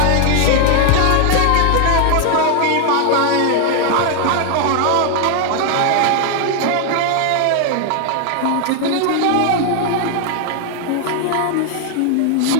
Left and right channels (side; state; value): both; different; correlation 0.00